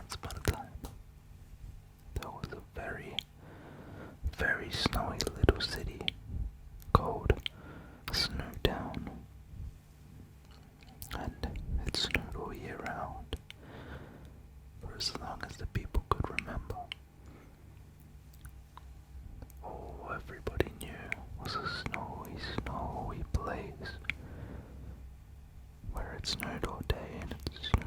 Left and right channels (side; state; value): both; identical; correlation 1.00